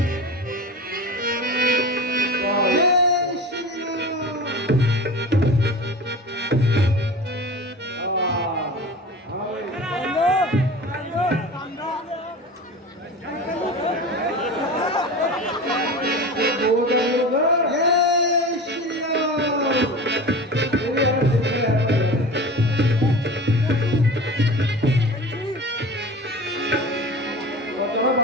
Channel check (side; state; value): both; normal; correlation 0.33